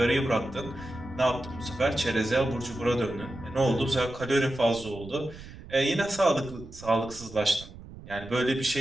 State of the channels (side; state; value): right; noise; rumble, 16 dB below the sound